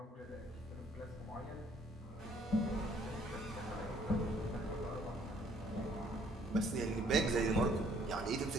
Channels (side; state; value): both; normal; correlation 0.62